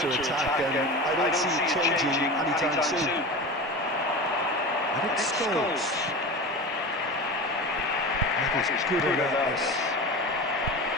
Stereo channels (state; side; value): normal; both; correlation 0.29